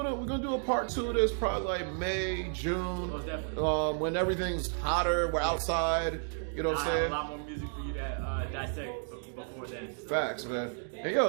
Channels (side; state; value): left; silent; 56 dB below the other